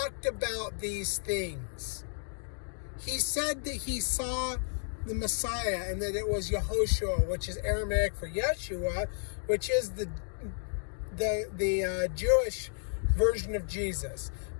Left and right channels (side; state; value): right; silent; 56 dB below the other